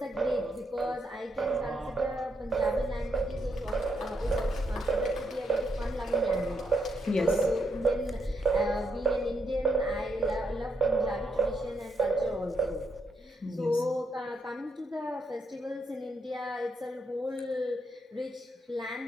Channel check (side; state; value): both; normal; correlation 0.79